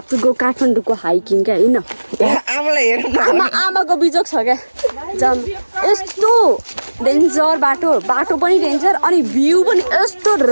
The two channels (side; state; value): both; inverted; correlation -1.00